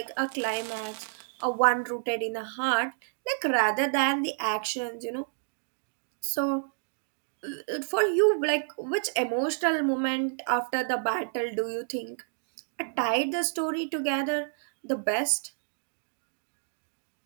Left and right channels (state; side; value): silent; left; digital silence